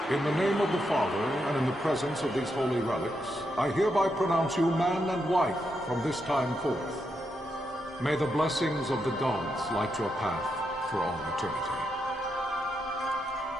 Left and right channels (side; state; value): both; normal; correlation 0.82